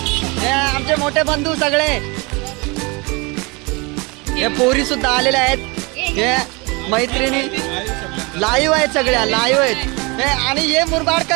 मोठे बंधू सगळे हे पोरी सुद्धा आलेले आहेत. हे मैत्रिणी लाईव्ह आहेत सगळ्या लाईव्ह आहेत. आणि हे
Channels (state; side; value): quieter; left; 27.6 dB